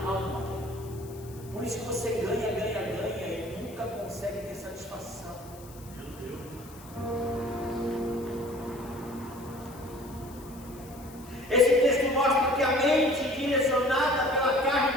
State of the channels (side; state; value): left; noise; hiss, 21 dB below the sound